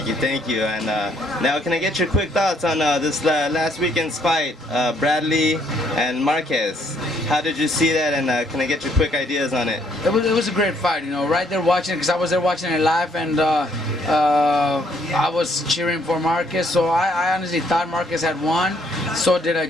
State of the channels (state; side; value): normal; both; correlation 0.68